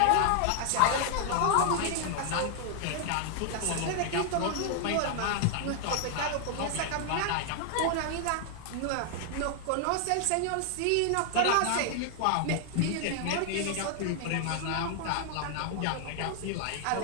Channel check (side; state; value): both; different; correlation 0.00